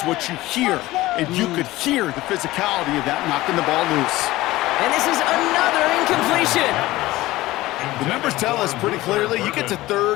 what you hear. And you could hear the physicality of that knocking the ball loose. And this is another incompletion. The numbers tell us pretty clearly, you get to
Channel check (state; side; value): quieter; right; 17.8 dB